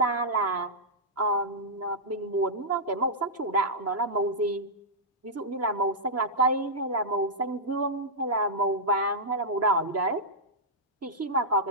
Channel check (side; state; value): both; normal; correlation -0.11